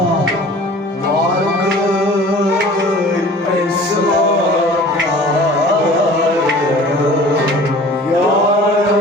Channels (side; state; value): both; normal; correlation 0.45